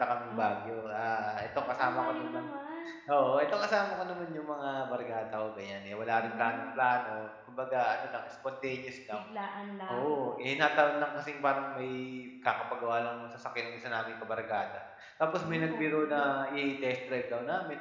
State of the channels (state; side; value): identical; both; correlation 1.00